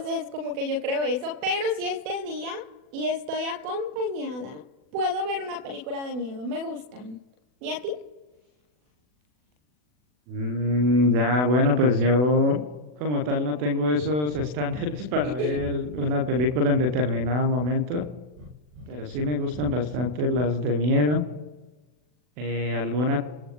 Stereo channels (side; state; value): left; late; 40 ms